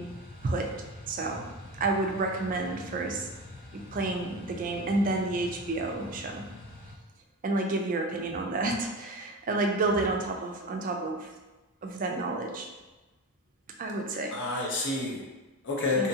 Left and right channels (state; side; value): normal; both; correlation 0.25